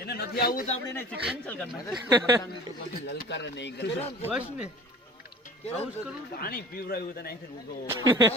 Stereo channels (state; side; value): normal; both; correlation 0.43